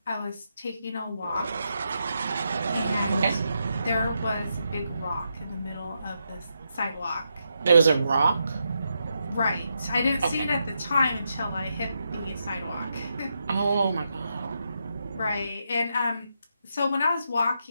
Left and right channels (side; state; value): both; inverted; correlation -0.83